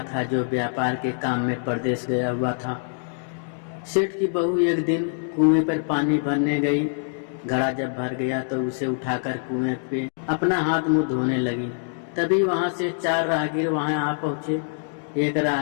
था जो व्यापार के काम में परदेश गया हुआ था। सेठ की बहू एक दिन कुएं पर पानी भरने गई। घड़ा जब भर गया तो उसे उठाकर कुएं पे अपना हाथ मुंह धोने लगी। तभी वहां से 4 राहगीर वहां आ पहुंचे। एक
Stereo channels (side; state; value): right; silent; digital silence